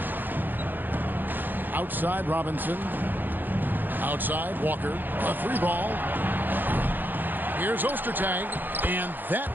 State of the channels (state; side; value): late; left; 0.090 ms